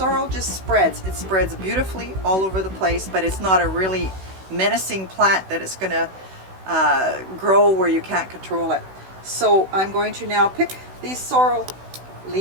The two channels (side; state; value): left; late; 16 ms